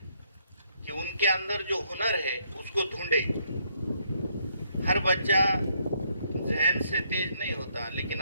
कि उनके अंदर जो हुनर है उसको ढूंढे। हर बच्चा जहन से तेज नहीं होता, लेकिन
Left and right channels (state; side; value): inverted; both; correlation -0.72